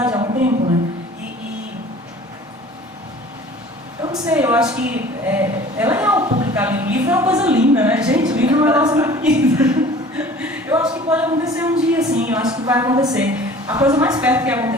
há um tempo, né? Eu não sei, eu acho que é legal publicar livro. Livro é uma coisa linda, né? Gente, livro é um negócio muito lindo. Eu acho que pode acontecer um dia, sim, eu acho que vai acontecer. A coisa mais perto que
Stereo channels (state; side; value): normal; both; correlation 0.46